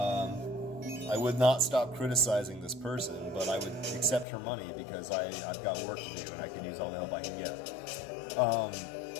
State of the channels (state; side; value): drops out; right; at 4.2 s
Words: I would not stop criticizing this person, but I would accept her money because I've got work to do and I can use all the help I can get.